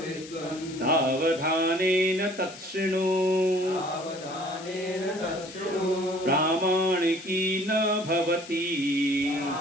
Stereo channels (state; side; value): noise; left; hiss, 16 dB below the sound